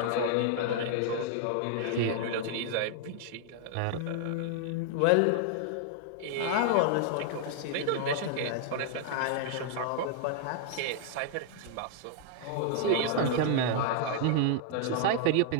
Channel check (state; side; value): different; both; correlation -0.01